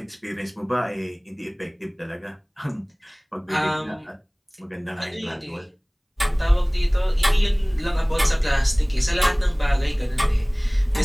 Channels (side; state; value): both; identical; correlation 1.00